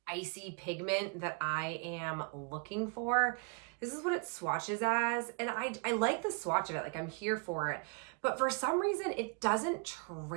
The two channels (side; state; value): left; quieter; 36.8 dB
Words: icy pigment that I am looking for. This is what it swatches as, and I like the swatch of it. I'm here for it, but for some reason it doesn't